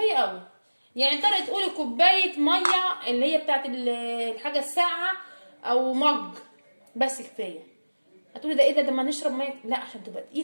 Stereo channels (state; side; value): inverted; both; correlation -1.00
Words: قوي. يعني تقدري تقولي كوبايه ميه اللي هي بتاعت الحاجه الساقعه او مج، بس كفايه. هتقولي ده ايه ده ما نشرب ميه؟ لا، عشان تبقى